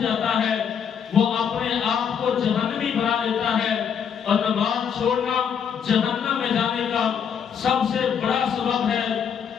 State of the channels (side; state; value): right; quieter; 7.6 dB